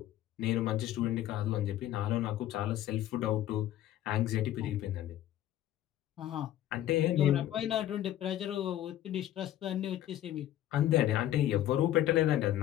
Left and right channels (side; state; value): right; quieter; 12.8 dB